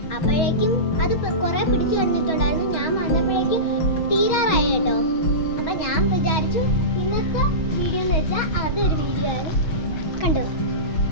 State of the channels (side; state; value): right; late; 6.2 ms